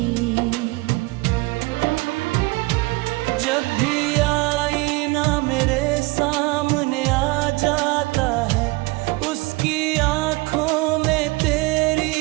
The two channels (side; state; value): left; quieter; 23.7 dB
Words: जब भी आईना मेरे सामने आ जाता है, उसकी आंखों में तेरी